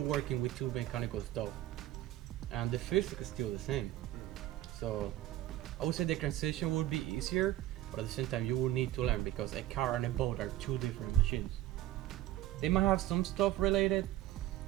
with two mechanical stuff and the physics is still the same. So I would say the transition would be easier, but at the same time you will need to learn, because a car and a boat are two different machines. They might have some stuff related,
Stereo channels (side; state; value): left; quieter; 14.7 dB